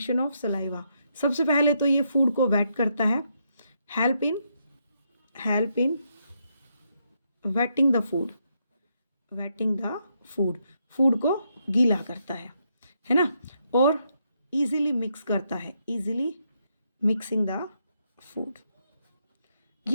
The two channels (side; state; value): both; inverted; correlation -0.78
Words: ऑफ सलाइवा, सबसे पहले तो ये फूड को वेट करता है। Help in waiting the food. Waiting the food, food को गीला करता है ना। और इजीली मिक्स करता है, इजीली मिक्सिंग द फूड।